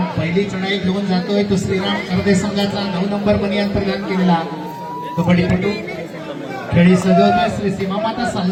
पहिली चढाई घेऊन जातोय तो श्रीराम करदे संघाचा 9 नंबर बनियान प्रदान केलेला कबड्डीपटू खेळी सजवतोय श्री सीमामाता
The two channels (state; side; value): identical; both; correlation 1.00